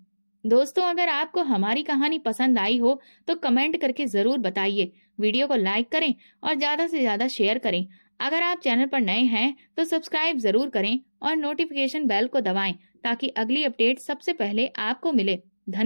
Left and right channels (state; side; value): inverted; both; correlation -1.00